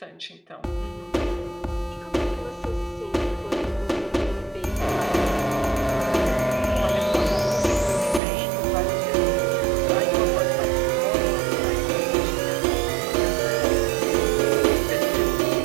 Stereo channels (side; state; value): left; drops out; at 8.2 s